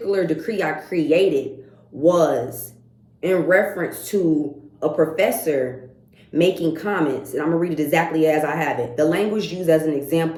decree I created was in reference to a professor making comments, and I'm gonna read it exactly as I have it. The language used as an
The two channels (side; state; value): both; identical; correlation 1.00